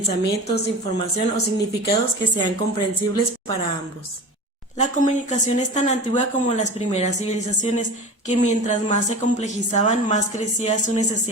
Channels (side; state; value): both; normal; correlation 0.33